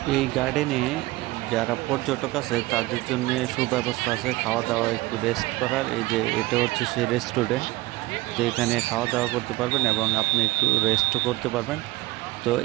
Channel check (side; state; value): left; quieter; 19.9 dB